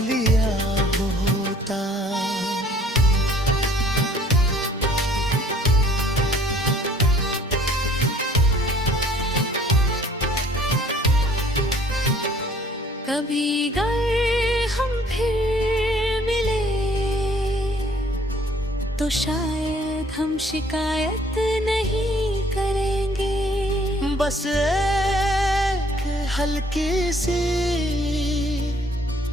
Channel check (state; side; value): normal; both; correlation 0.58